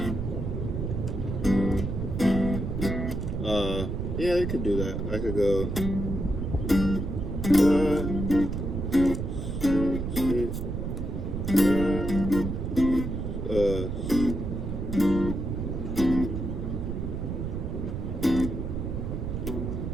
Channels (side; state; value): right; noise; rumble, 3 dB below the sound